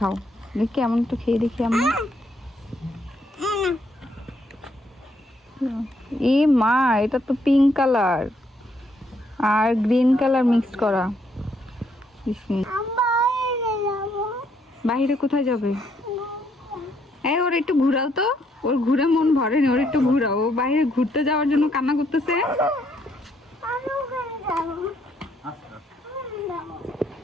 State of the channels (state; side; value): normal; both; correlation 0.72